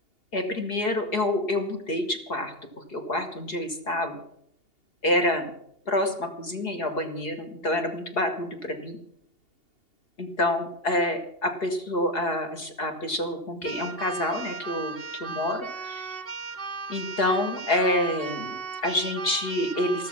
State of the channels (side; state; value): right; late; 2.8 ms